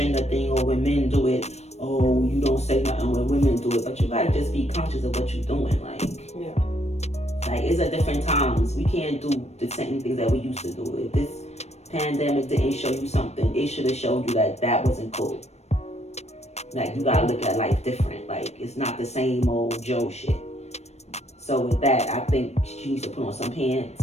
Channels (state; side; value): late; right; 0.31 ms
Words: thing, or when men do it, oh, you don't say nothing when women do it. But you gotta just be conscious of what you're doing. Like, like, it's at different times. We can't do the same things that we used to do. If this pandemic didn't show you something, it should have showed you that wasn't cool. Like, you gotta look at life different. Like, it's not the same old Joe shit. So with that, I think she needs to put on some